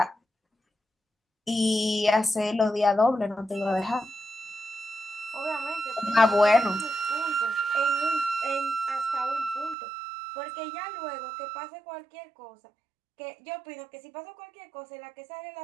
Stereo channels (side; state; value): left; drops out; at 9.8 s